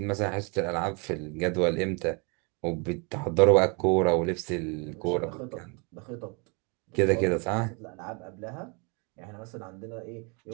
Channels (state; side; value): quieter; left; 33.0 dB